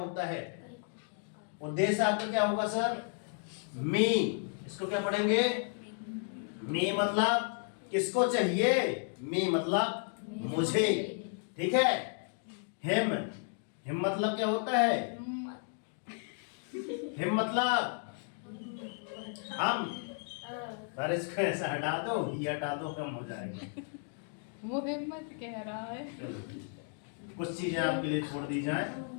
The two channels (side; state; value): right; silent; 55 dB below the other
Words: है? उद्देश्य आपका क्या होगा सर? मी। इसको क्या पढ़ेंगे? मी मतलब किसको चाहिए? मी मतलब मुझे। ठीक है। हिम, हिम मतलब क्या होता है? हिम मतलब हम। पर इसको ऐसा हटा दो, ये हटा दो, कम हो जाएगा। वो हिम्मत कह रहा है। चलो कुछ चीजें आपके लिए छोड़ दी जाए।